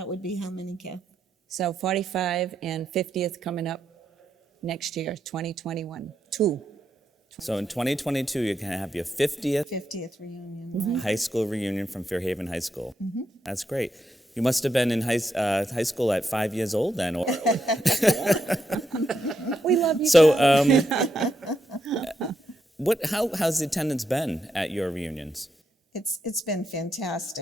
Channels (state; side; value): normal; both; correlation 0.82